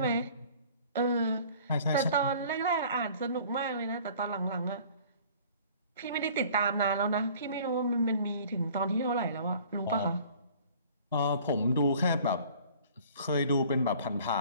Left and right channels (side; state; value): both; inverted; correlation -0.50